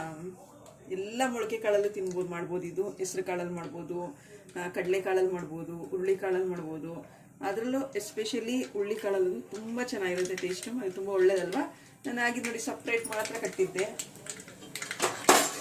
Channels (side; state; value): both; identical; correlation 1.00